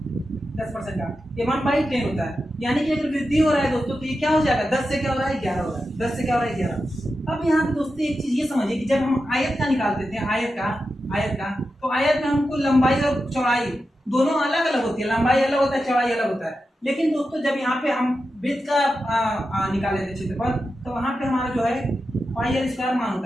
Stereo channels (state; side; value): normal; both; correlation 0.90